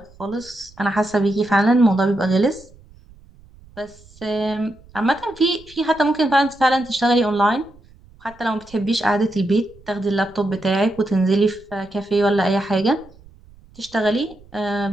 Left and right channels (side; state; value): right; noise; rumble, 25 dB below the sound